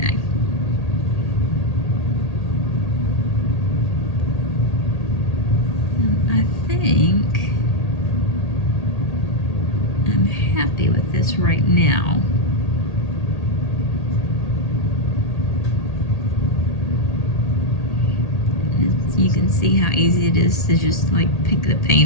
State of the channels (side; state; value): right; late; 1.8 ms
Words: And I think I'm happy with this right now. You can see how easy it is to just like pick the